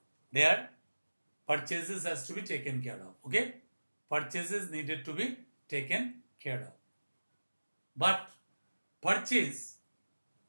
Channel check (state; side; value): inverted; both; correlation -1.00